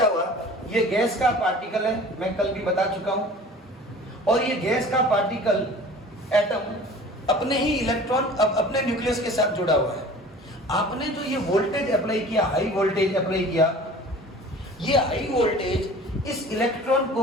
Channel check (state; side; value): normal; both; correlation 0.43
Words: हुआ? ये गैस का पार्टिकल है, मैं कल भी बता चुका हूं, और ये गैस का पार्टिकल एटम अपने ही इलेक्ट्रॉन अपने न्यूक्लियस के साथ जुड़ा हुआ है। आपने जो ये वोल्टेज अप्लाई किया, हाई वोल्टेज अप्लाई किया, ये हाई वोल्टेज इस इलेक्ट्रॉन